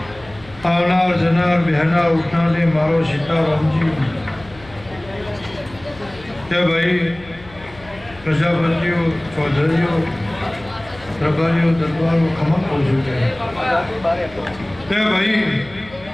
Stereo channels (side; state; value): left; noise; hum, 21 dB below the sound